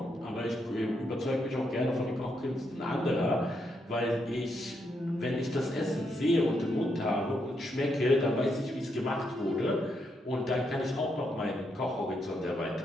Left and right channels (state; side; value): normal; both; correlation 0.79